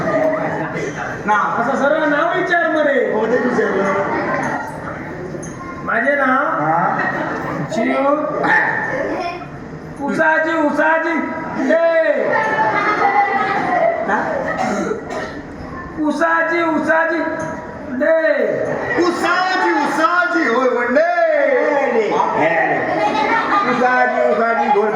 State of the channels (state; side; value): identical; both; correlation 1.00